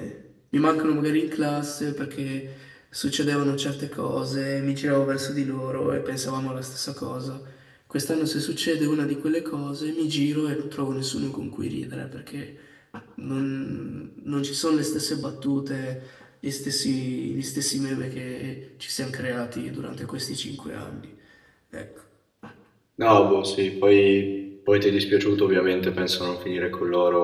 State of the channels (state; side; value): identical; both; correlation 1.00